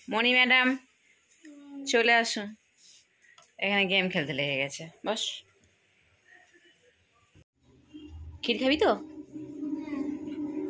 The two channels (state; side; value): identical; both; correlation 1.00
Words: মণি ম্যাডাম চলে আসুন, এখানে গেম খেলতে লেগে গেছে। বস, ক্ষীর খাবি তো?